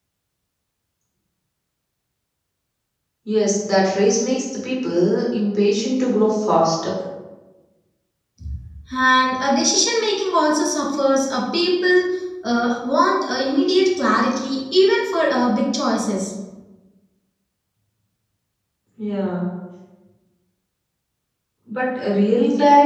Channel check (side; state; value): both; identical; correlation 1.00